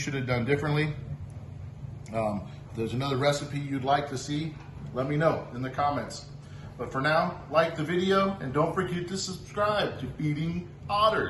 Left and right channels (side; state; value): both; identical; correlation 1.00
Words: have done differently. If there's another recipe you'd like to see, let me know in the comments. But for now, like the video and don't forget to subscribe to Feeding